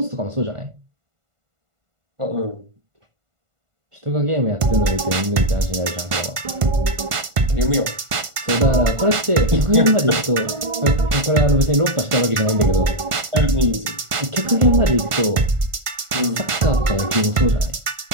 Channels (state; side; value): late; left; 1.5 ms